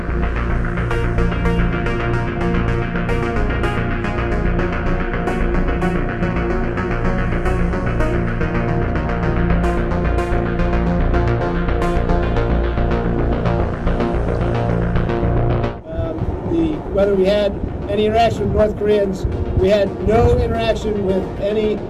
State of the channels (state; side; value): identical; both; correlation 1.00